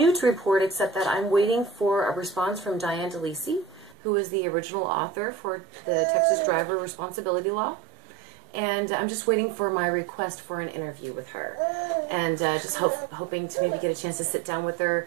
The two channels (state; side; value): drops out; left; at 4.0 s